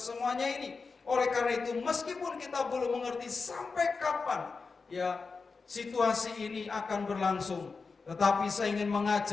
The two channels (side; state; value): right; quieter; 4.5 dB